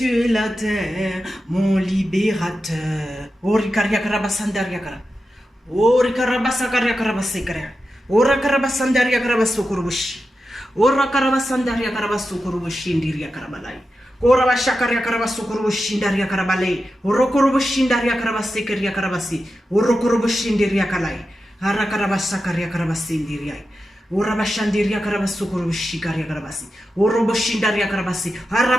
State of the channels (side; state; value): both; normal; correlation 0.90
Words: et la terre, mon libérateur. Ori karabasakaria karabasekara. Ora karabasandaria karabasukurubushi. Ora karabasandaria karabasukurubushi ndiria karabalai. Ora bashakaria karabasukurubushi ndaria karabalai. Ora kurubushi ndaria karabasekeria karabasi. Ora kurubushi ndiria kalai. Ara karabasakaria karabasindiria. Ora bashandiria karabasukurubushi karia karabasi. Ora boshindaria karabasi.